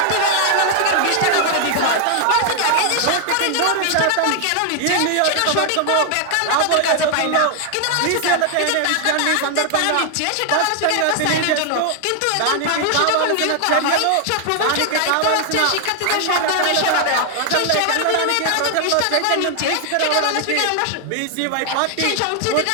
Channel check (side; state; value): both; different; correlation 0.00